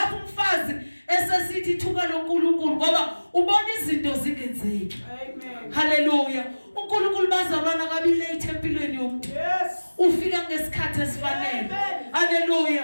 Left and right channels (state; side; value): inverted; both; correlation -1.00